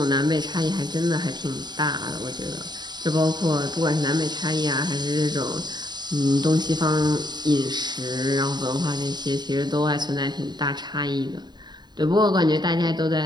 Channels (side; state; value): left; late; 0.21 ms